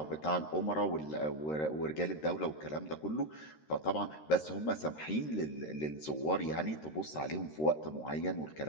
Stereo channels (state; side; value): late; right; 13 ms